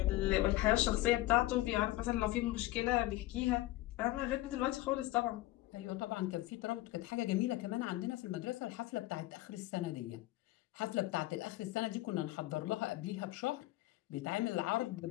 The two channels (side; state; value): right; quieter; 17.4 dB